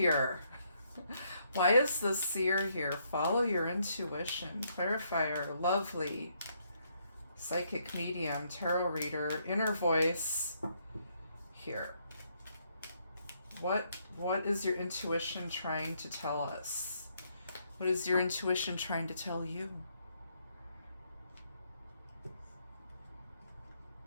Why is the seer here? Follow your intuition. Clarifier, lovely. Psychic medium, tarot reader, inner voice. Here. What is your intuition trying to tell us? What is your intuition trying to tell you?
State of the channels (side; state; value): both; inverted; correlation -0.73